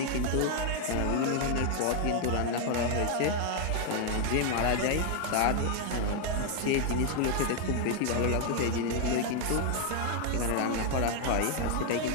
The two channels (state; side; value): different; both; correlation 0.00